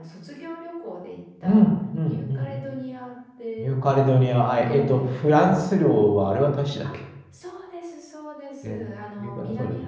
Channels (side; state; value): both; identical; correlation 1.00